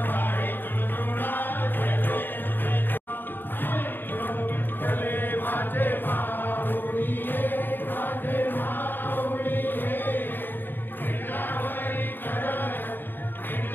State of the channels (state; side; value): late; right; 0.094 ms